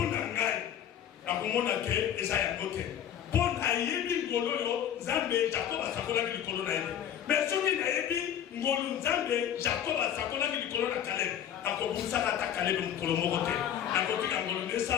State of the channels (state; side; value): quieter; right; 9.9 dB